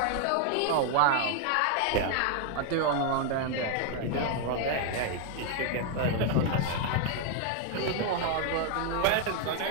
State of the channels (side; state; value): both; different; correlation 0.00